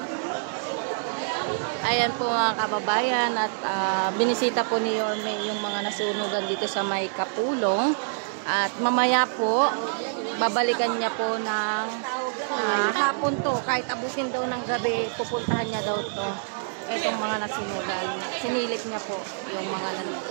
Ayan po mga kababayan at binisita po ni Yorme yung mga nasunugan dito sa may Kapulong at mamaya po babalikan niya po ng hapon to, kahit abutin daw ng gabi pupuntahan niya daw to itong mga nasunugan, sinilip niya po yung mga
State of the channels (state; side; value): silent; left; digital silence